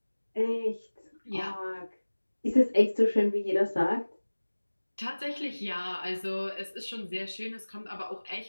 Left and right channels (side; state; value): both; inverted; correlation -1.00